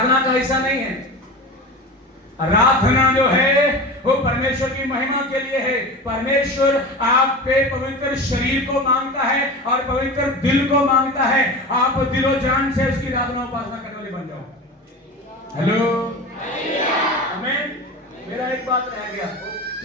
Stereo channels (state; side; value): normal; both; correlation 0.30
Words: का हिस्सा नहीं है। आराधना जो है वो परमेश्वर की महिमा के लिए है। परमेश्वर आपके पवित्र शरीर को मांगता है और पवित्र दिल को मांगता है। आप दिलो जान से उसकी आराधना उपासना करने वाले बन जाओ। हेलो, आमीन। मेरा एक बात रह गया,